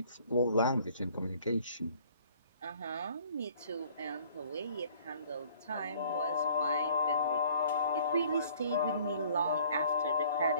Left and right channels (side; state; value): both; inverted; correlation -0.56